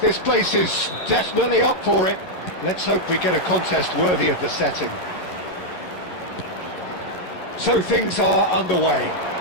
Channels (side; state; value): right; late; 11 ms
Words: place is definitely up for it. Let's hope we get a contest worthy of the setting. So things are underway.